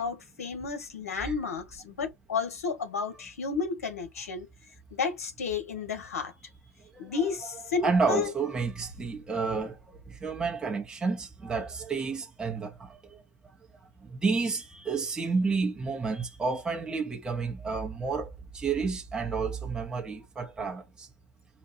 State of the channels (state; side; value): normal; both; correlation 0.52